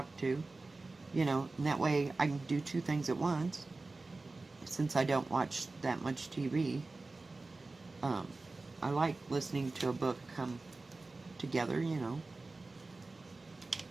to, you know, and that way I can do 2 things at once. Since I don't watch that much TV, I like listening to a book come together, you know.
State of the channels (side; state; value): left; quieter; 3.4 dB